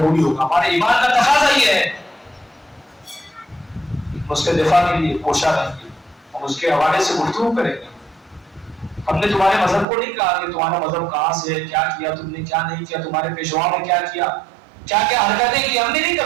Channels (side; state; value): left; drops out; at 9.9 s